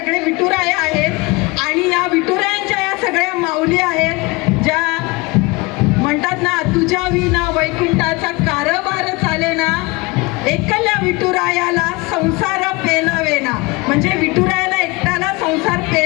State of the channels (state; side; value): quieter; right; 25.0 dB